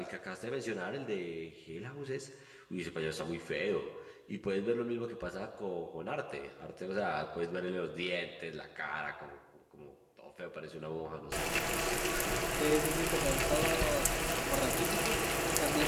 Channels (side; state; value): both; identical; correlation 1.00